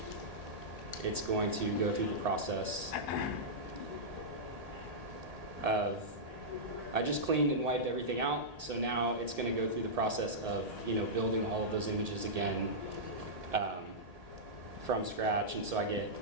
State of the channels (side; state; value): left; late; 1.8 ms